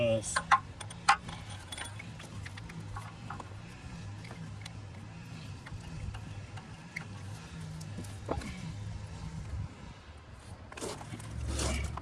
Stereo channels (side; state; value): both; identical; correlation 1.00